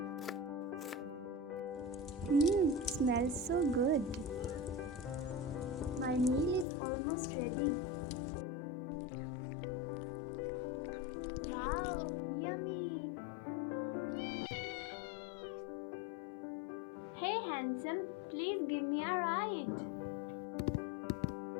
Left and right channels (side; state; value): right; drops out; at 6.7 s